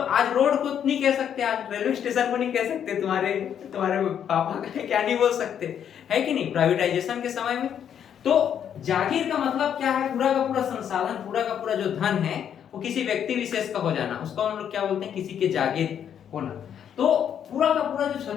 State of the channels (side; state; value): right; quieter; 8.9 dB